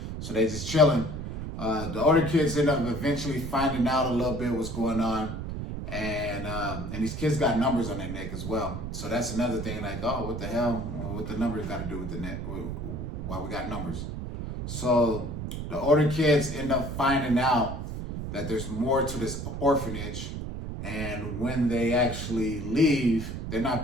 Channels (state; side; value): noise; right; rumble, 6 dB below the sound